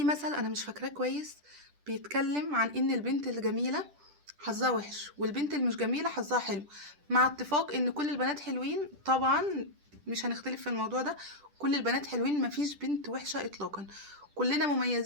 مثل انا مش فاكراه كويس، بيتكلم عن ان البنت الجميله حظها وحش والبنت اللي مش جميله حظها حلو، مع اتفاق ان كل البنات حلوين طبعا. مش هنختلف في الموضوع ده، كل البنات حلوين، مفيش بنت وحشه اطلاقا. كلنا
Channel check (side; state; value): left; late; 10 ms